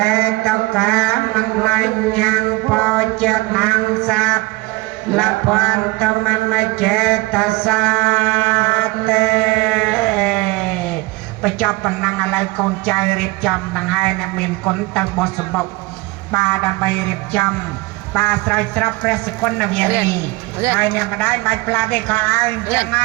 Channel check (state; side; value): quieter; left; 22.7 dB